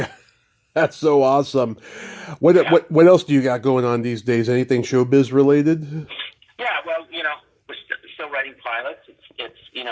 that's so awesome. What else do you got going on these days? Anything showbiz related? Yeah, well, we're still writing pilots. It's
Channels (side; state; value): both; identical; correlation 1.00